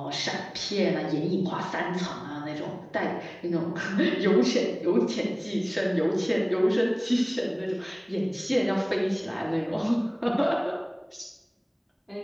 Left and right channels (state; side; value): identical; both; correlation 1.00